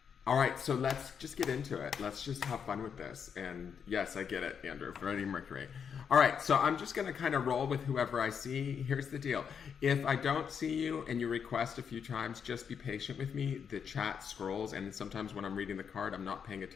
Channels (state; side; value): quieter; right; 7.1 dB